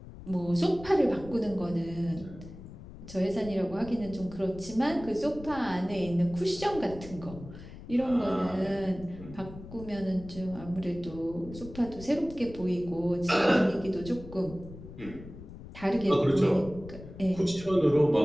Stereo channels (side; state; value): left; noise; rumble, 15 dB below the sound